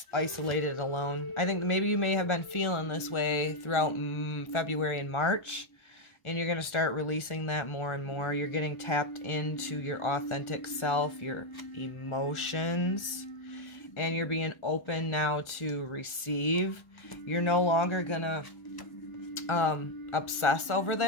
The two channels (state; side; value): late; right; 1.3 ms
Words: isolated alone. I think maybe you may have been feeling this way throughout February and March, and you're going to start releasing that more and more. You're getting tapped into your authentic self, your emotions, and you're being open now to receive. You're no longer going to obsess over